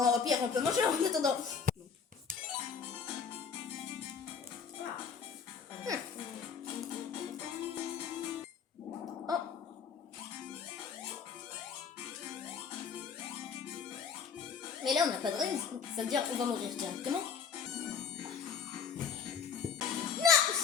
au pire, on peut manger en attendant. Ah. Oh. Mais là, on n'a pas de raison. Ça veut dire qu'on va mourir directement.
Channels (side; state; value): right; quieter; 6.6 dB